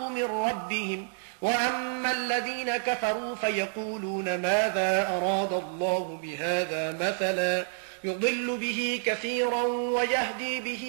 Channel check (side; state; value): left; silent; digital silence